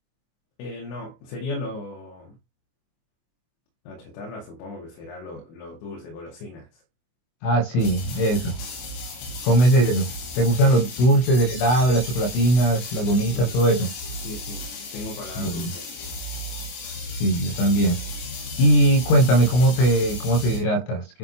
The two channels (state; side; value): late; right; 24 ms